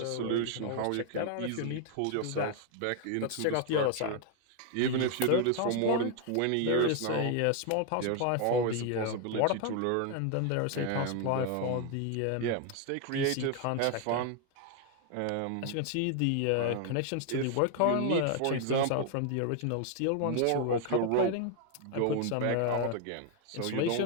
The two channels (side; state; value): both; different; correlation 0.01